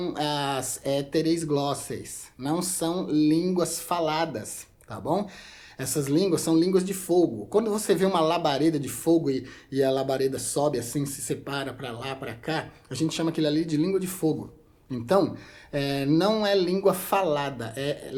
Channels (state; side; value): identical; both; correlation 1.00